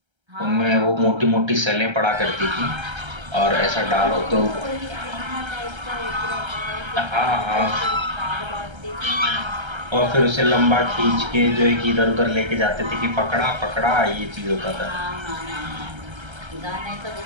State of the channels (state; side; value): late; left; 1.3 ms